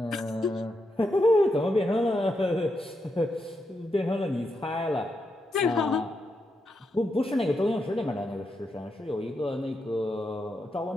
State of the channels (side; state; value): both; normal; correlation 0.84